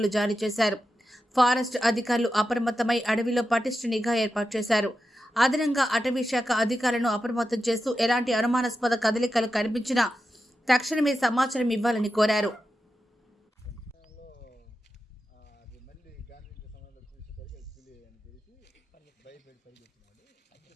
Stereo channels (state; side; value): normal; both; correlation 0.90